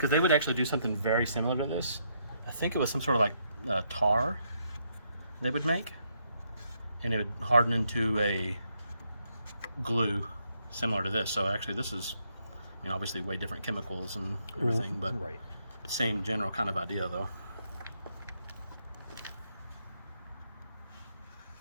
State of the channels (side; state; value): both; inverted; correlation -0.76